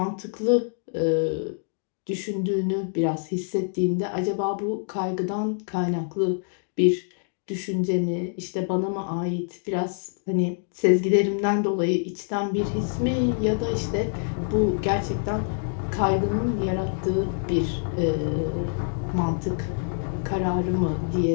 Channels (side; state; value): right; silent; 61 dB below the other